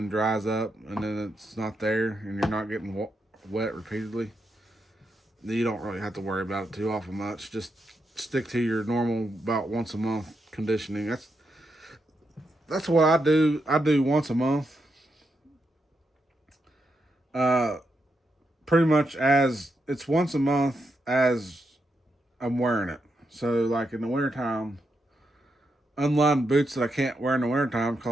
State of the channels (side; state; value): both; normal; correlation 0.83